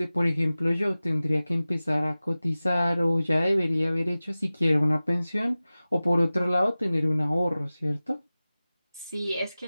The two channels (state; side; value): inverted; both; correlation -0.97